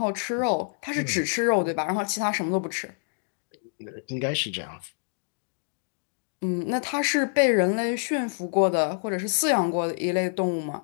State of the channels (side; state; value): right; silent; digital silence